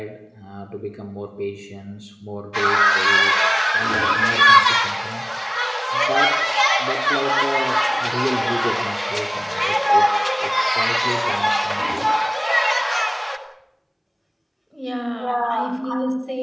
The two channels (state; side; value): identical; both; correlation 1.00